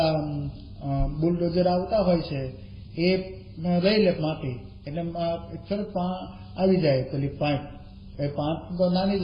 બુલડોઝર આવતા હોય છે એ લઈ લે માટી, એટલે તરત આવી જાય પેલી પાઇપ. એ પાઇપ તો નાની જ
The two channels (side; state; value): both; identical; correlation 1.00